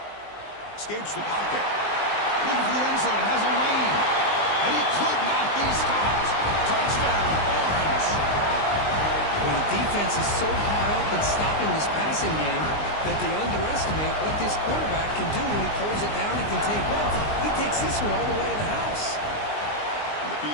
Escapes the pocket. Looking for the end zone. Has a lane. And he could not be stopped. Touchdown, Orange. Well, the defense is so hot up in stopping this passing game that they underestimate what this quarterback can do when he pulls it down and can take off. He takes this one all the way to the house. And the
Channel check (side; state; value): right; late; 19 ms